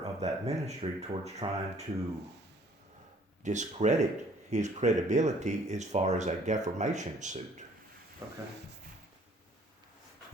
of that ministry towards trying to discredit his credibility as far as a defamation suit. Okay.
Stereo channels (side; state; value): both; normal; correlation 0.58